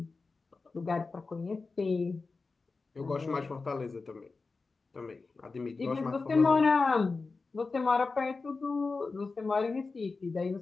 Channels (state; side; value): quieter; right; 4.1 dB